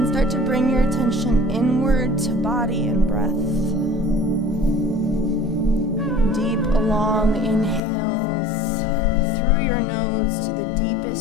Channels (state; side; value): drops out; right; at 7.8 s